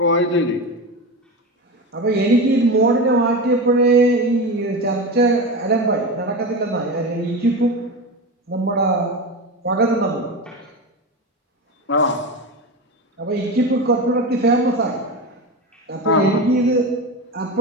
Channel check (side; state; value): both; normal; correlation 0.23